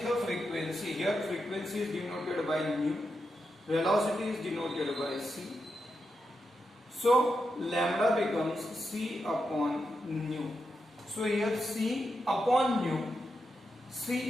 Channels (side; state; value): both; normal; correlation 0.86